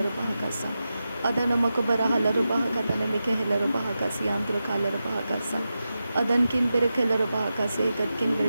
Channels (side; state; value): both; inverted; correlation -0.91